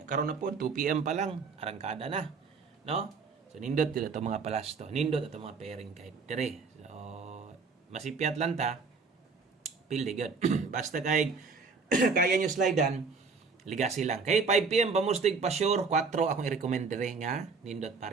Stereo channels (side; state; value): left; quieter; 4.8 dB